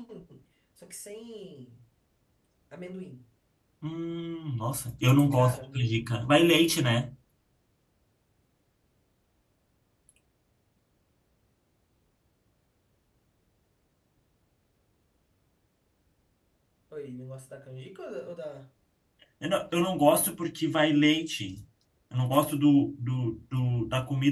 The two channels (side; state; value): both; identical; correlation 1.00